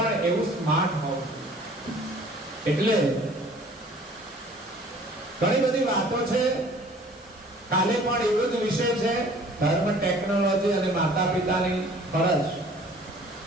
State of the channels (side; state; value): both; normal; correlation 0.51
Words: એવું સ્માર્ટ હોવું જોઈએ. એટલે ઘણી બધી વાતો છે. કાલે પણ એવો જ વિષય છે, ધર્મ, ટેકનોલોજી અને માતા પિતાની ફરજ.